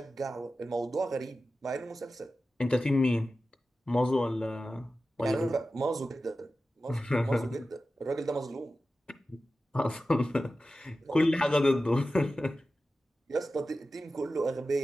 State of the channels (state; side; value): normal; both; correlation 0.94